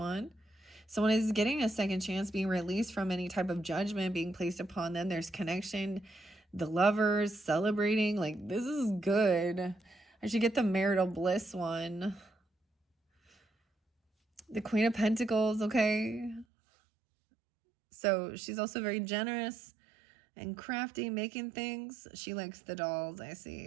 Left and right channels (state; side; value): drops out; left; at 16.4 s